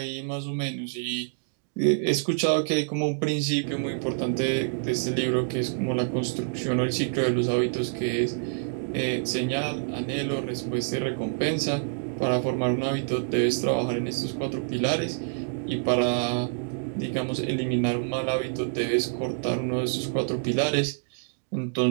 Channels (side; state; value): left; silent; digital silence